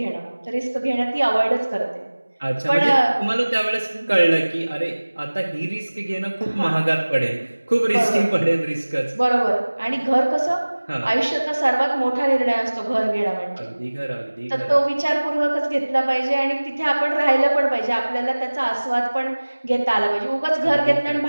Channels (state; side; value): inverted; both; correlation -1.00